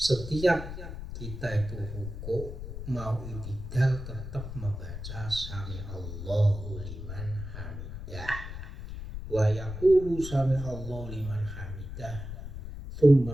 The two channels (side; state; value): left; noise; rumble, 9 dB below the sound